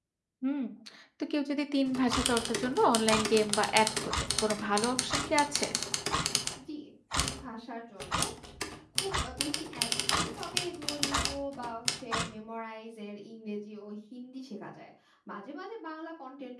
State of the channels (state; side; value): identical; both; correlation 1.00